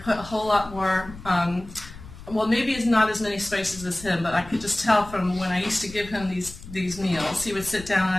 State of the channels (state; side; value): noise; left; rumble, 16 dB below the sound